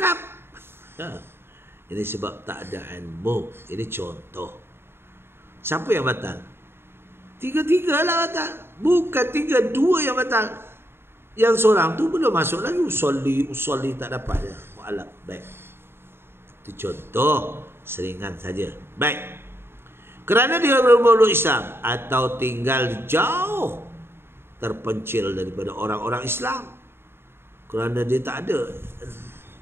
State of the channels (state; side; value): late; left; 0.11 ms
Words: Ini sebab tak ada ilmu. Ini contoh. Siapa yang batal? Tiga-tiga lah batal. Bukan tiga, dua yang batal. Yang seorang tu belum masuk lagi. Usolli tak dapat je. Mu'alaf. Baik. Itu contoh. Seringan saja. Baik. Kerana dia bermuluk Islam atau tinggal jauh, terpencil daripada orang-orang Islam. Kerana dia tak ada